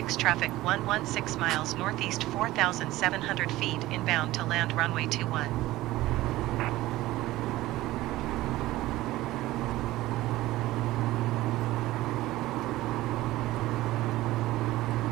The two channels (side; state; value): left; quieter; 17.0 dB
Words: traffic 116 miles northeast 4,700 feet inbound to land runway 21.